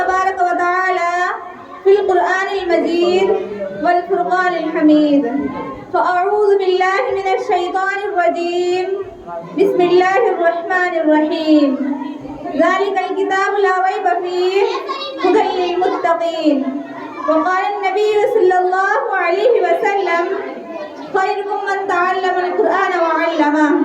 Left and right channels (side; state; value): both; identical; correlation 1.00